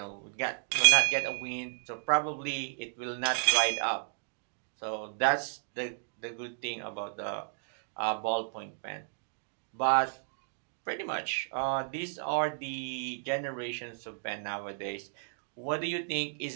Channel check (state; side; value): silent; left; digital silence